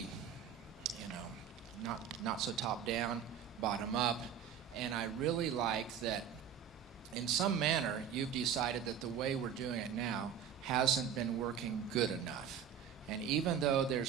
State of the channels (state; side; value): quieter; left; 8.1 dB